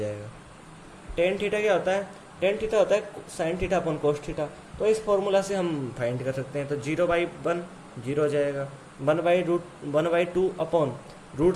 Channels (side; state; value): both; identical; correlation 1.00